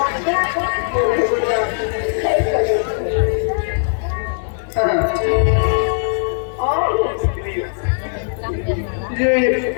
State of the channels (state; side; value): silent; right; digital silence